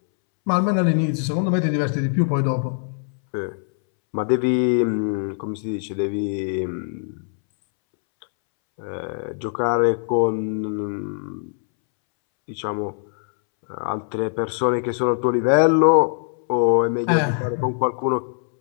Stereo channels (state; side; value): silent; right; 64 dB below the other